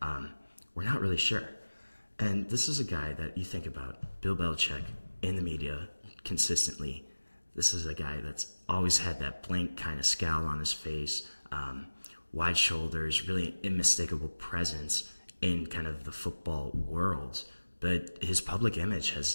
We're not really sure. And this is a guy that you think about, Bill Belichick, in the media consistently. This is a guy that's always had that blank kind of scowl on his face, wide shoulders, really unmistakable presence in kind of the football world. But his public image has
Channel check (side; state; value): both; inverted; correlation -1.00